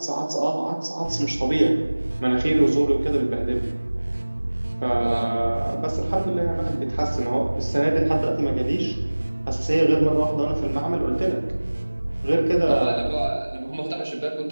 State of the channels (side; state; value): both; inverted; correlation -1.00